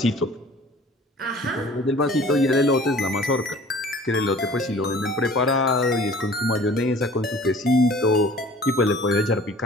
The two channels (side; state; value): both; normal; correlation 0.48